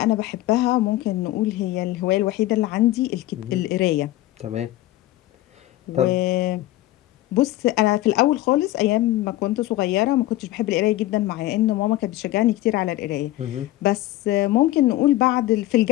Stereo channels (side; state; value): right; quieter; 16.0 dB